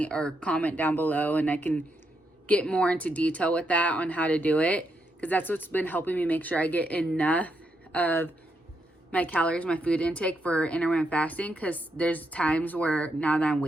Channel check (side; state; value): both; normal; correlation 0.80